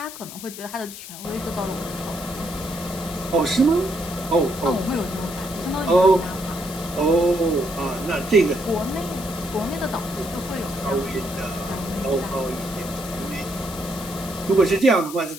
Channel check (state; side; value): noise; left; hiss, 12 dB below the sound